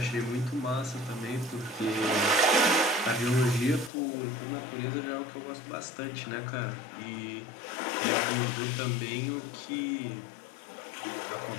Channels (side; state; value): right; drops out; at 3.9 s